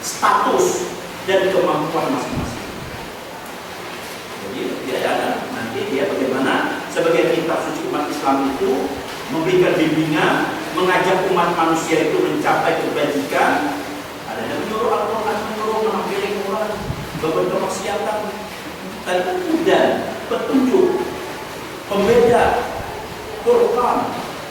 status dan kemampuan masing-masing. Jadi dia ada nanti dia bagaimana sebagai kitab suci umat Islam itu memberikan bimbingan, mengajak umat manusia itu mencapai kebajikan. Ada yang menyuruh Al-Quran, menyuruh mengampiri Quran, beberapa kemaksiatan, dan petunjuk, pembeda, Quran.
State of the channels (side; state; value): both; identical; correlation 1.00